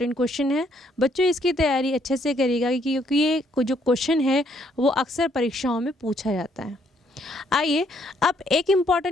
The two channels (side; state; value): both; normal; correlation 0.69